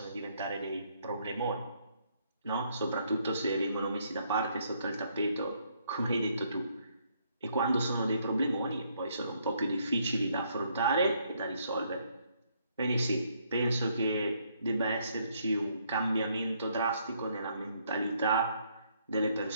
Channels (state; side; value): inverted; both; correlation -0.70